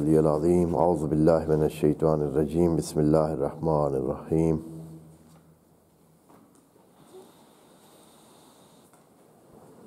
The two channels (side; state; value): both; identical; correlation 1.00